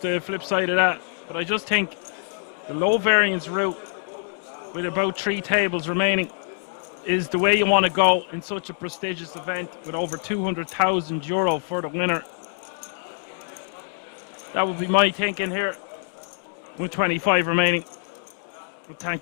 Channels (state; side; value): silent; right; 62 dB below the other